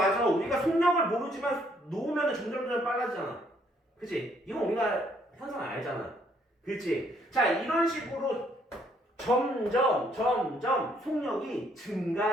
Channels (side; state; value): both; normal; correlation 0.68